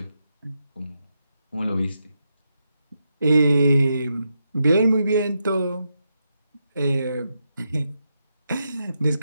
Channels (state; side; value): inverted; both; correlation -0.84